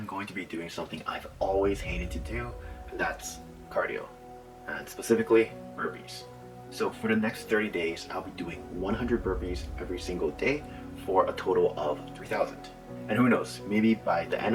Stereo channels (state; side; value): identical; both; correlation 1.00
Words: going to be doing something I've always hated to do, and that's cardio, and specifically burpees. So for the next 30 days, I'll be doing 100 burpees every single day for a total of 3,000. And who knows, maybe by the